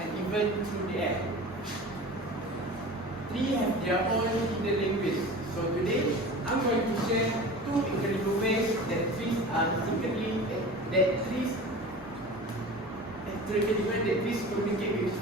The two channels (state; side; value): normal; both; correlation 0.36